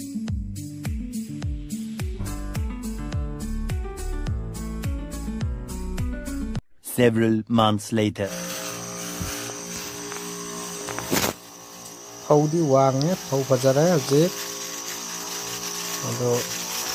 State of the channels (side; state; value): both; identical; correlation 1.00